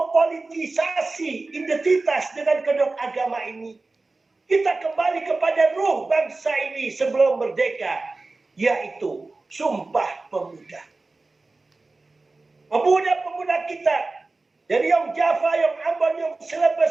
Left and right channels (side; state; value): left; quieter; 3.4 dB